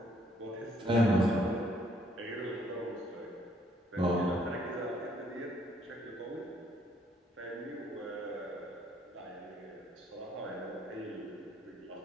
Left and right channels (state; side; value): normal; both; correlation 0.66